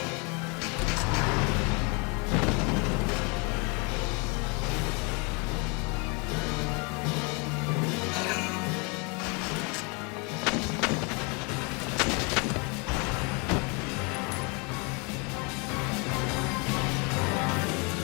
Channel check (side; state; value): right; quieter; 31.9 dB